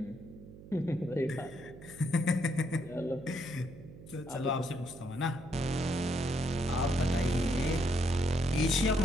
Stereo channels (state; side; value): noise; right; hum, 17 dB below the sound